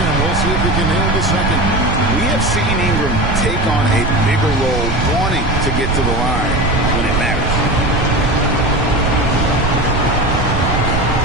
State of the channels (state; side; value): noise; right; rumble, 2 dB below the sound